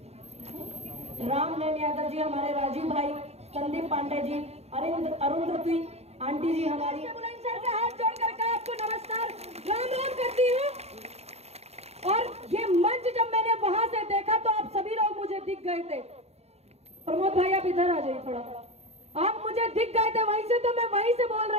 राम नयन यादव जी, हमारे राजीव भाई, संदीप पांडे जी, अरुंधति आंटी जी हमारी, बुलंदशहर से हाथ जोड़ करके आपको नमस्कार राम राम करती हूँ। और ये मंच जब मैंने वहां से देखा तो आप सभी लोग मुझे दिख गए थे। प्रमोद भाई आप इधर आ जाइए थोड़ा, आप मुझे दिख गए थे वहीं से, तो मैं वहीं से बोल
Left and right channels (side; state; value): left; late; 0.31 ms